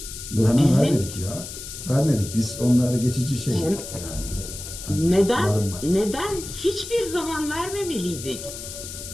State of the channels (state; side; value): noise; left; hiss, 10 dB below the sound